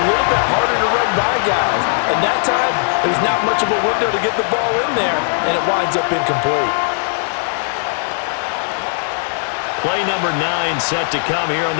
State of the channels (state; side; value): silent; right; 68 dB below the other